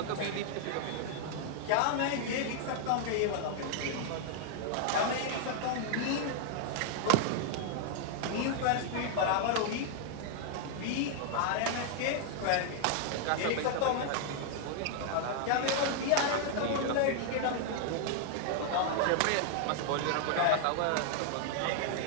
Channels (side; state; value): both; different; correlation 0.00